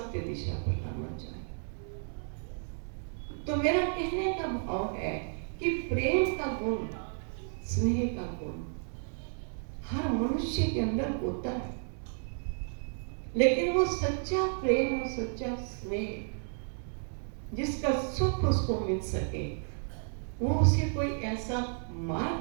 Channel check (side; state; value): left; silent; 56 dB below the other